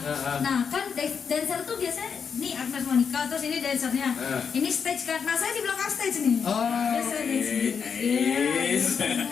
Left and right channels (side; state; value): right; quieter; 6.5 dB